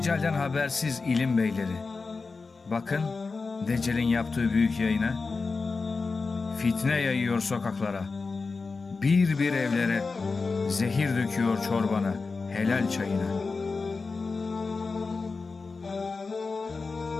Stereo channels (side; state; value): right; quieter; 4.3 dB